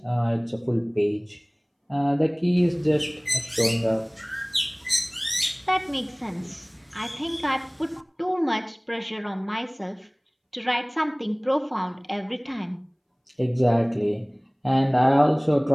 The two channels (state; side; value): identical; both; correlation 1.00